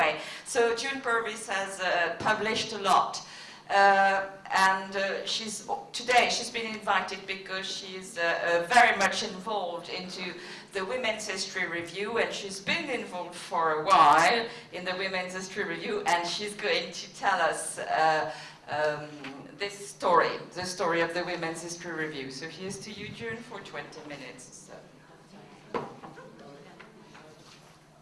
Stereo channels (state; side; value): identical; both; correlation 1.00